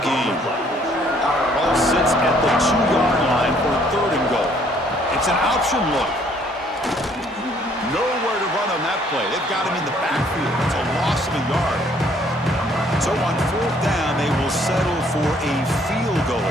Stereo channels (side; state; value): both; normal; correlation 0.63